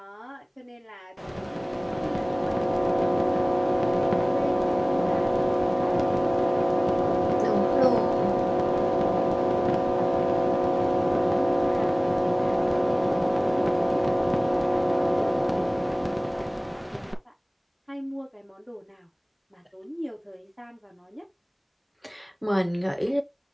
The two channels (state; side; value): identical; both; correlation 1.00